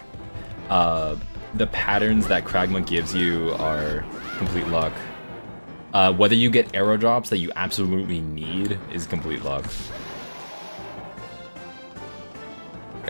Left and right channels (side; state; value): both; inverted; correlation -1.00